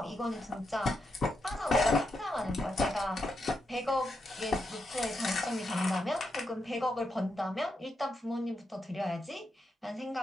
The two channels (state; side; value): normal; both; correlation 0.84